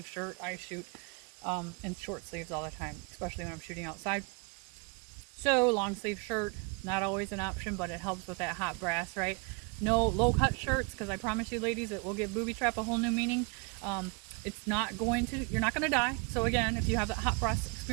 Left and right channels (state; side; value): quieter; left; 31.4 dB